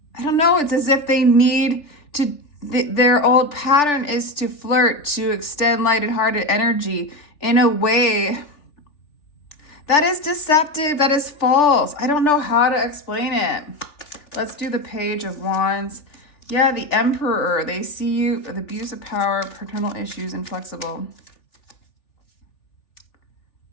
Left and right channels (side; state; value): right; late; 3.4 ms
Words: I don't know. It's as if they need to, their old pattern is to flirt, to extend lighted-hearted energy in a way that is deceptive, that is false. I don't know how to explain it. Let's do the Page of Wands. Yeah, the Emperor. They see you, the abuse of power, paternal issues, inflexible.